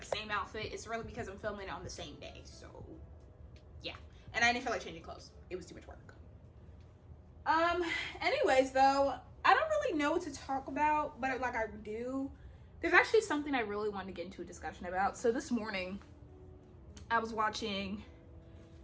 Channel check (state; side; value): identical; both; correlation 1.00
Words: same outfit, it's really because I'm filming it on the same day. So yeah, and I didn't feel like changing clothes. It was too much work. Anyways though, I don't really know what to talk about, but like I do, there's actually something I really wanted to get into a discussion about. So this morning I was watching